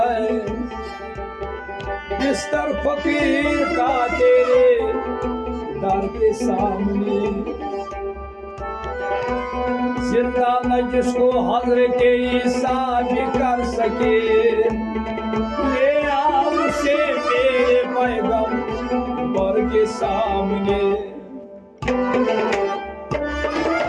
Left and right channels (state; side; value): identical; both; correlation 1.00